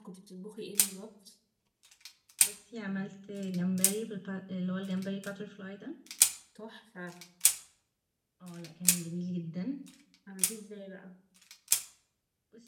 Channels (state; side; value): identical; both; correlation 1.00